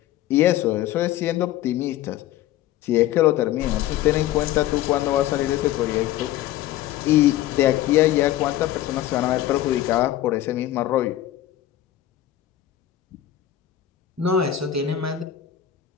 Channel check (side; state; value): right; quieter; 12.8 dB